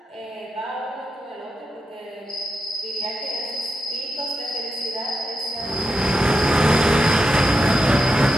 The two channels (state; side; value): normal; both; correlation 0.86